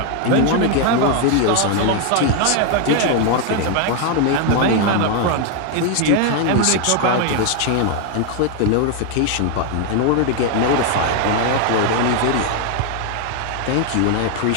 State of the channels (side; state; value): both; different; correlation 0.01